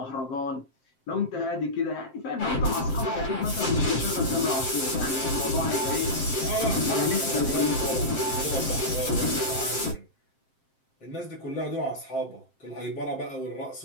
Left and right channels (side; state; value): right; late; 7.6 ms